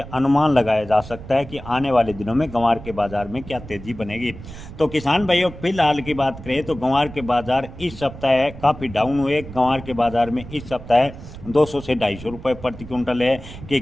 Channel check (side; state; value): right; noise; rumble, 14 dB below the sound